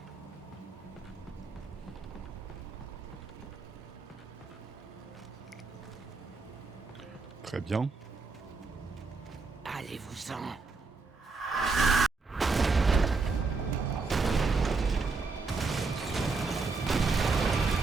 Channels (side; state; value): left; quieter; 4.1 dB